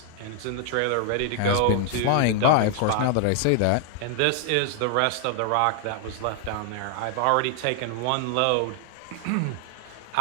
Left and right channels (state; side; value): different; both; correlation 0.00